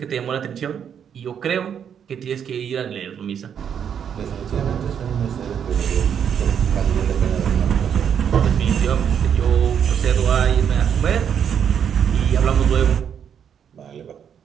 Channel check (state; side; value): quieter; left; 8.2 dB